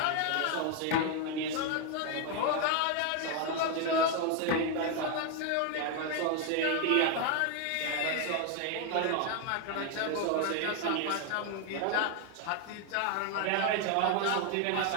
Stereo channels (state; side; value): different; both; correlation 0.01